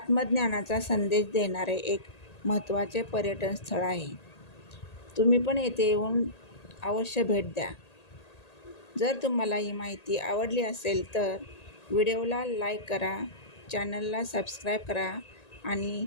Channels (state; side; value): late; right; 1.8 ms